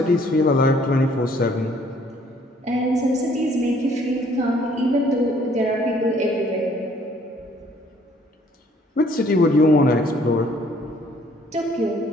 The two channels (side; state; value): both; normal; correlation 0.61